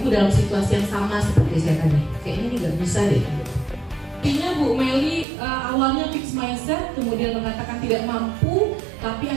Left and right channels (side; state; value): left; drops out; at 5.2 s